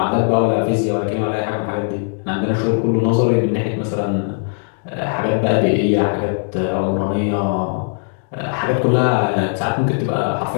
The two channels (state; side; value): silent; right; 67 dB below the other